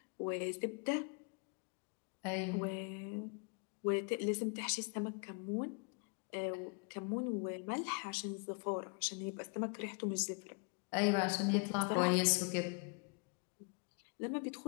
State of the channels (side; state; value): right; quieter; 36.3 dB